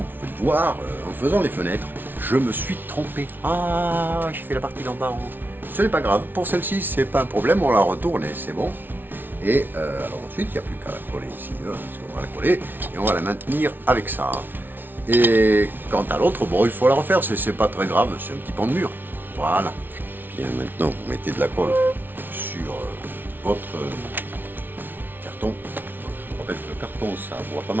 pouvez le voir, en faisant les fenêtres, je me suis trompé. Ah, j'ai fait la partie d'en bas en haut. Ce n'est pas grave. Pour celle-ci, c'est pas un problème. On la retourne et c'est bon. Et alors ensuite, il n'y a plus qu'à la coller ici, parce qu'on va la coller et on va la maintenir avec ça. Et quant à l'autre, bon, il faut la refaire, c'est pas très grave, c'est un petit pan de mur. Voilà. Bien, maintenant, vous mettez de la colle sur votre carton. Je vous rappelle que le carton, ça boit pas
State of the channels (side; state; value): left; late; 0.094 ms